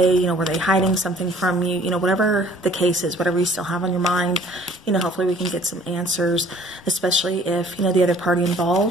Were they hiding something from you? Whatever the case is, whatever you still have on your mind, hopefully we can get some answers, especially if, the other party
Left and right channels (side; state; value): both; normal; correlation 0.55